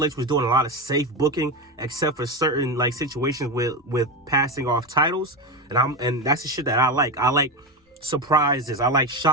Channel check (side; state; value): both; normal; correlation 0.17